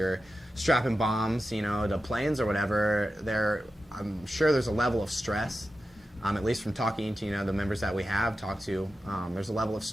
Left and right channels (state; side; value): normal; both; correlation 0.92